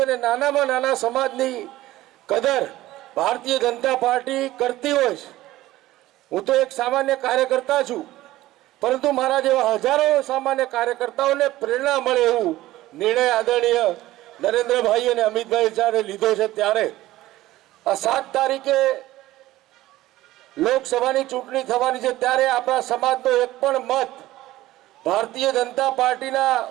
અને નાનામાં નાના સમાજની કદર ભારતીય જનતા પાર્ટી કરતી હોય છે. હું તો એક સામાન્ય કાર્યકર્તા છું, પરંતુ મારા જેવા હજારો સામાન્ય કાર્યકર્તાઓને પ્રેરણા મળે એવું નિર્ણય આદરણીય નરેન્દ્રભાઈ અને અમિતભાઈ જ્યારે લીધો છે ત્યારે આ 7 તારીખે લોકસભાની ચૂંટણી થવાની છે ત્યારે આપણા સમાજનો એક પણ મત ભારતીય જનતા પાર્ટીના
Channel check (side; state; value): left; quieter; 16.3 dB